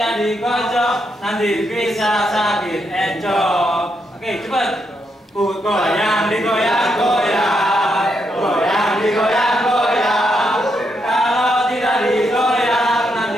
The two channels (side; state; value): both; normal; correlation 0.80